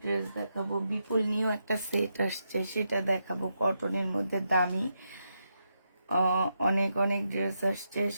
ড্রেস দেখাবো। বিপুল নিউ একটা সেট আসছে, সেটা দেখাবো, কটনের মধ্যে দামি অনেক অনেক ড্রেস আসছে।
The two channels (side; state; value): both; inverted; correlation -0.84